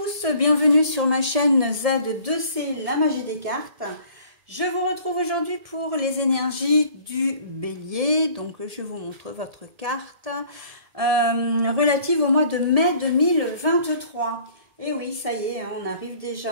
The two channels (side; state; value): left; late; 1.7 ms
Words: bienvenue sur ma chaîne Z2C, la magie des cartes. Je vous retrouve aujourd'hui pour les énergies du bélier. Donc je vous montre votre carte relative au mois de mai 2023. Et oui, ça y est, on arrive